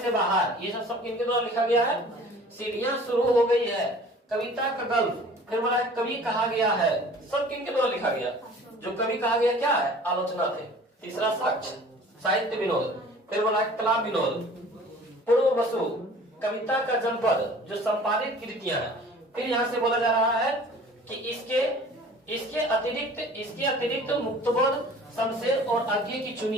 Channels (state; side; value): normal; both; correlation 0.47